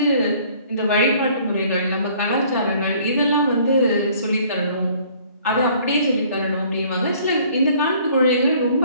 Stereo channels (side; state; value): both; inverted; correlation -0.57